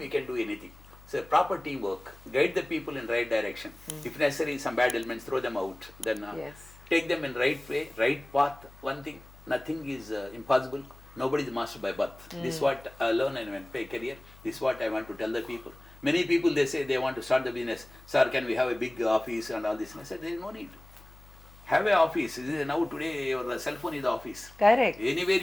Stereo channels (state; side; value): noise; left; hum, 22 dB below the sound